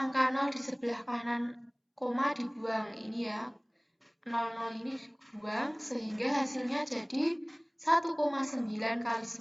angka 0 di sebelah kanan koma dibuang. Ini ya, 00 ini dibuang sehingga hasilnya jadi 1,9 kali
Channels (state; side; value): identical; both; correlation 1.00